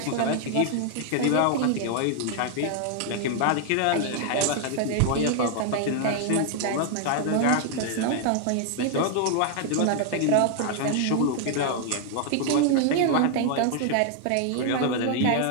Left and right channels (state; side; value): different; both; correlation 0.00